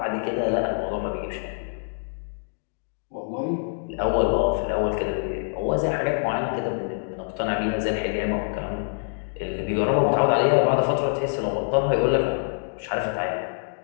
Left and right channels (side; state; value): right; silent; digital silence